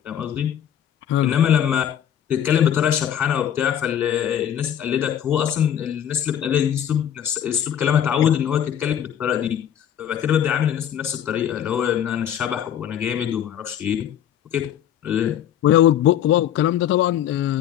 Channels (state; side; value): quieter; right; 10.0 dB